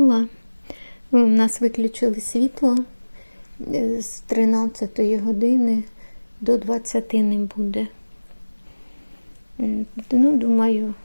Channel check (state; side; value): inverted; both; correlation -1.00